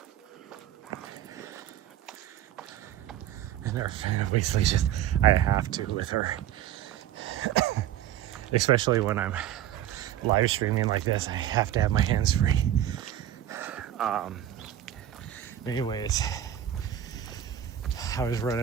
obviously just, I have to with her. Especially when I'm live streaming like this, I have to have my hands free. Anyways, I was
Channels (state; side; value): quieter; left; 11.4 dB